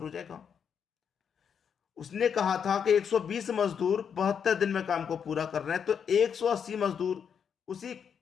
हो जाएगा। उसने कहा था कि 120 मजदूर 72 दिन में काम को पूरा कर रहे हैं, तो 180 मजदूर उसी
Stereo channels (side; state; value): right; quieter; 7.3 dB